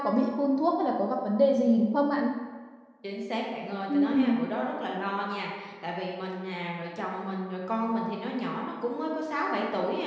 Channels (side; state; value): both; identical; correlation 1.00